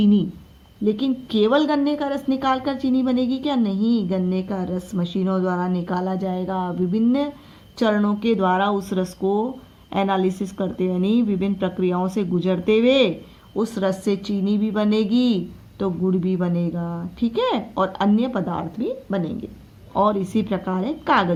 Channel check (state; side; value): identical; both; correlation 1.00